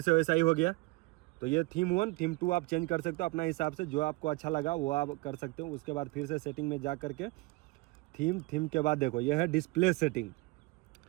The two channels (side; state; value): left; quieter; 24.0 dB